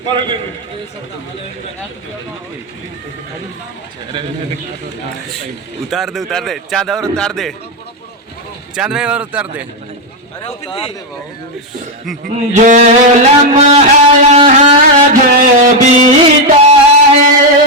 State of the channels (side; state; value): both; normal; correlation 0.04